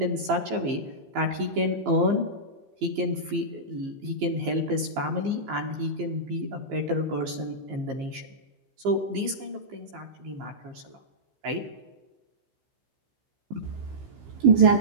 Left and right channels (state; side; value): late; left; 15 ms